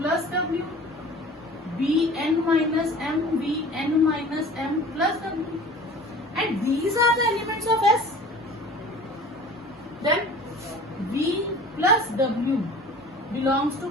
W, Vn minus M plus W. And these are the elements of S. Then V plus W belongs to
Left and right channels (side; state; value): both; normal; correlation 0.43